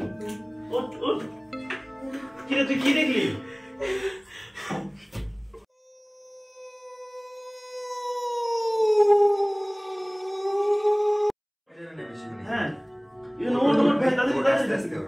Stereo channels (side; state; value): both; identical; correlation 1.00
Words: ওট ওট কি রে তুই কি দেখলি? হ্যাঁ ইউনো ওট ওট ভাই